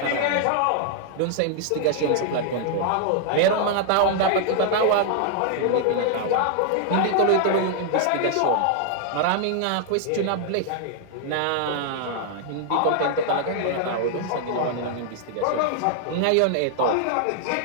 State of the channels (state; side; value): different; both; correlation 0.00